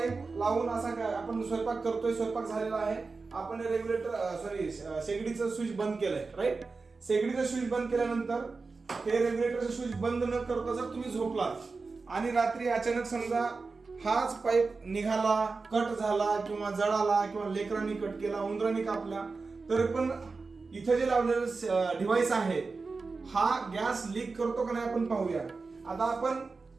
लावून असा काय आपण स्वयंपाक करतोय, स्वयंपाक झालेला आहे, आपण रेग्युलेटर शेगडीचं स्विच बंद केलंय, राईट. शेगडीचं स्विच बंद केल्यानंतर हे रेग्युलेटरचं स्विच बंद न करता जर तुम्ही झोपलात आणि रात्री अचानक समजा हाच पाईप निघाला, कट झाला किंवा जळाला किंवा लेकरांनी कट केला, उंदरांनी कापला, तर पण इथे जे लावलेलं डिव्हाइस आहे हा गॅस लीक करतो का नाही आपण पाहूया. आता आपण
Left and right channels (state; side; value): quieter; left; 4.2 dB